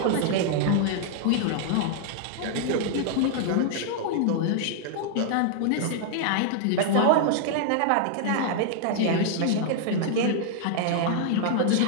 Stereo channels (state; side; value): different; both; correlation -0.01